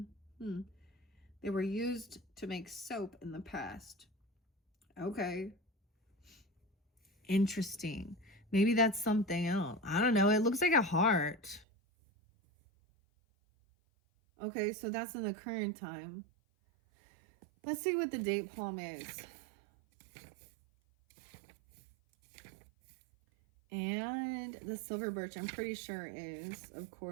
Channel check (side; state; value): left; drops out; at 11.7 s